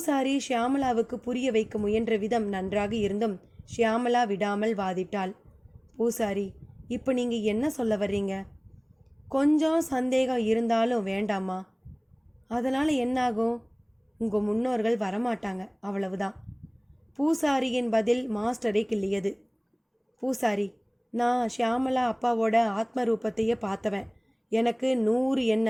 ஷியாமளாவுக்கு புரிய வைக்க முயன்ற விதம் நன்றாக இருந்தும் ஷியாமளா விடாமல் வாதிட்டாள். பூசாரி, இப்போ நீங்கள் என்ன சொல்ல வர்றீங்க? கொஞ்சம் சந்தேகம் இருந்தாலும் வேண்டாமா? அதனால் என்னாகும்? உங்கள் முன்னோர்கள் வரமாட்டாங்க, அவ்வளவுதான். பூசாரியின் பதில் மாஸ்டரை கிள்ளியது. பூசாரி, நான் ஷியாமளா அப்பாவோட ஆத்ம ரூபத்தையே பார்த்தவன். எனக்கு 100 என்ன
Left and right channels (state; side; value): identical; both; correlation 1.00